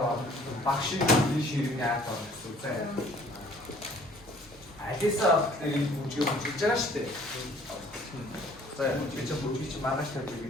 막신 이 시리냐 또. 알겠어. 이 부지가 진짜 시대. За чи бүжиг чи маргааш тавьж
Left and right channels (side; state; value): both; normal; correlation 0.56